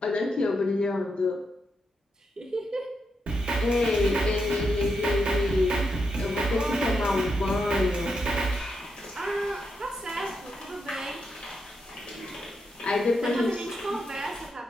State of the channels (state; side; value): normal; both; correlation 0.83